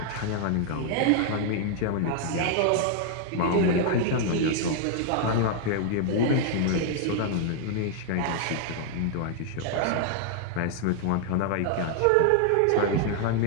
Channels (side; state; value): both; different; correlation 0.00